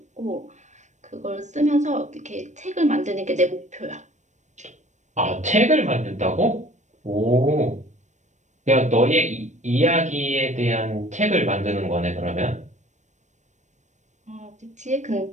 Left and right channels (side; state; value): left; late; 0.34 ms